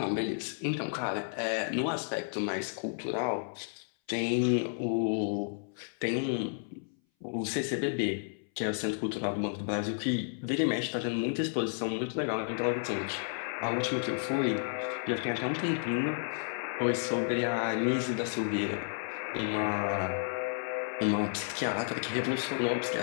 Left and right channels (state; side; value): silent; right; 56 dB below the other